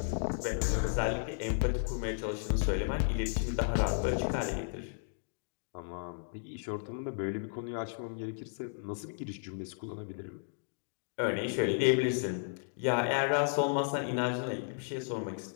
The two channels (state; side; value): silent; right; digital silence